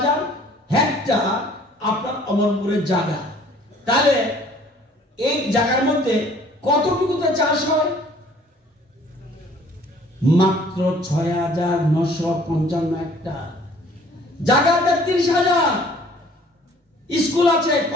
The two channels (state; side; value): normal; both; correlation 0.55